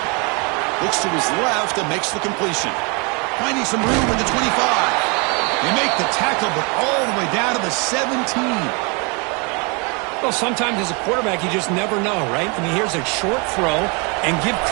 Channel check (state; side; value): quieter; left; 31.7 dB